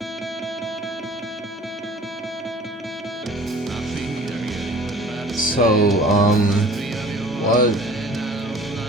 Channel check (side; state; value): both; normal; correlation 0.47